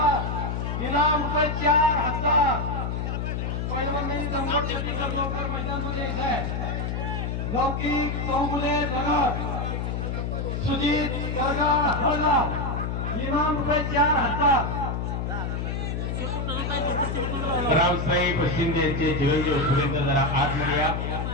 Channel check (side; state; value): left; noise; hum, 2 dB below the sound